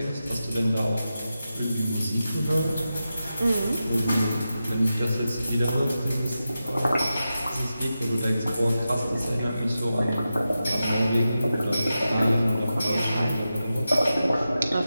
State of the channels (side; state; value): both; inverted; correlation -0.91